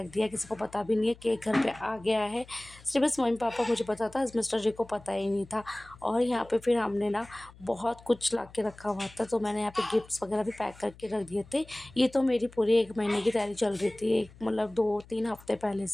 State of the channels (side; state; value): left; noise; hum, 22 dB below the sound